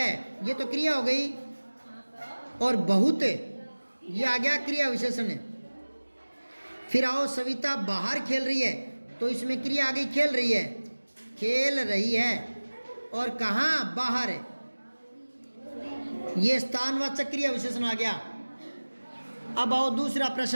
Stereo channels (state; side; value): inverted; both; correlation -1.00